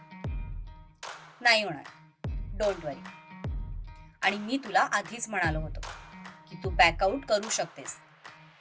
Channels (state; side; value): identical; both; correlation 1.00